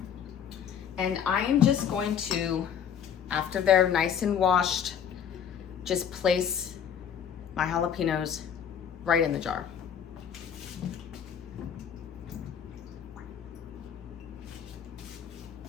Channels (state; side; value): quieter; right; 8.2 dB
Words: And I am just going to, after they're nice and washed, just place my jalapenos right in the jar.